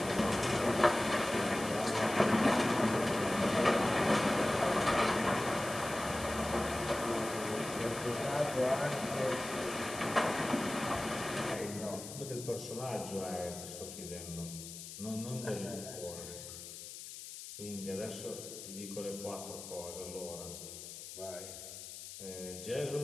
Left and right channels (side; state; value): left; noise; hiss, 11 dB below the sound